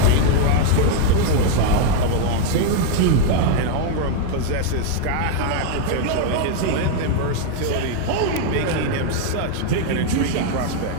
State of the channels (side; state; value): both; different; correlation 0.01